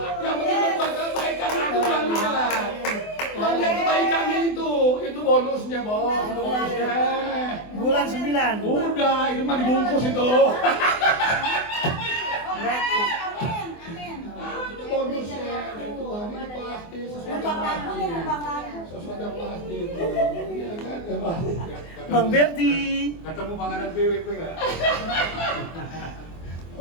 Yang penting berbuat kebaikan aku Tuhan lihat. Tuhan lihat kebaikannya itu bonusnya bos, itu bonusnya. Bulan 9. Udah, itu mah dibungkus itu. Amin, amin. Itu bonusnya. Dari Tuhan ini pasti sesuatu yang pasti. Sesuatu yang pasti itu. Iya kan, ya pasti. Bang Berti. Ketemu panganan PWP nggak?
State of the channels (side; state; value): right; late; 24 ms